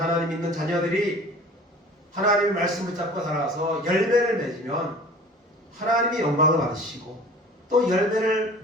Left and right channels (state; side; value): normal; both; correlation 0.44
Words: 하나님 믿는 자녀들이 하나님의 말씀을 잡고 살아가서 열매를 맺으면 하나님이 영광을 받으시고 또 열매를